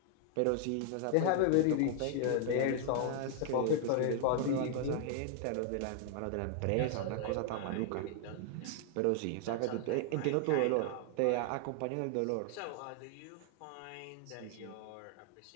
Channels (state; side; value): different; both; correlation 0.00